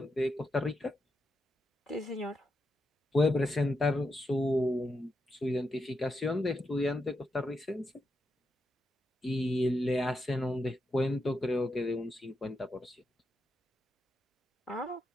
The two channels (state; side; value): normal; both; correlation 0.85